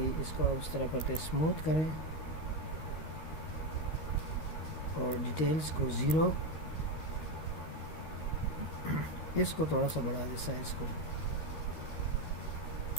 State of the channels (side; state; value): right; late; 13 ms